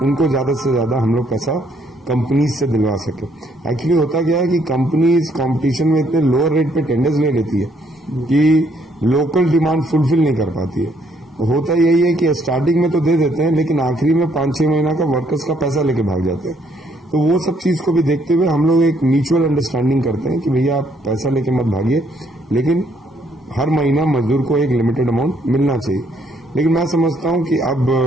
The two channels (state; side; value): normal; both; correlation 0.69